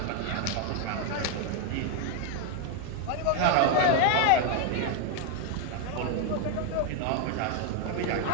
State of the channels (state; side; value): different; both; correlation 0.01